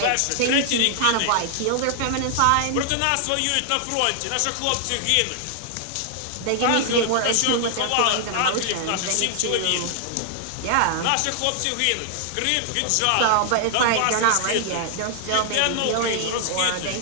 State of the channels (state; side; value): different; both; correlation 0.00